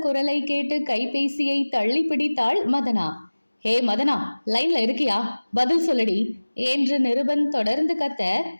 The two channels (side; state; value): both; inverted; correlation -1.00